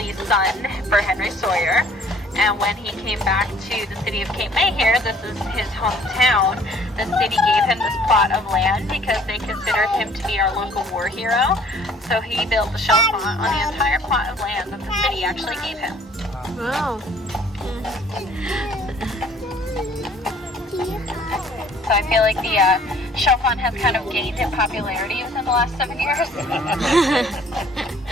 son for Henry Sawyer. And when he came back to the city of Cape May here, this is his hometown, the city gave him this plot of land because they considered him to be our local war hero. So he built the shell font on the entire plot of land that the city actually gave him. Wow. So I feel like the shell font has kind of gained in popularity within the last 7 years.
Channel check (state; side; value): normal; both; correlation 0.56